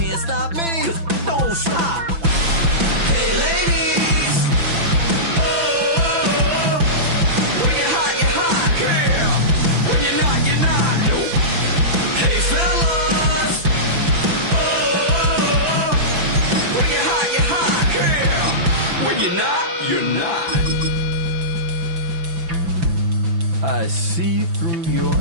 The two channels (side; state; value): left; late; 6.0 ms